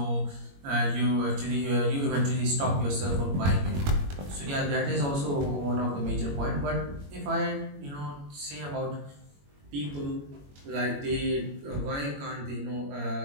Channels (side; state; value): left; late; 21 ms